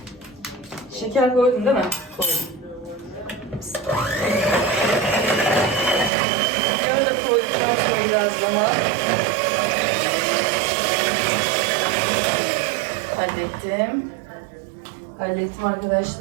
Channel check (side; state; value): left; drops out; at 6.1 s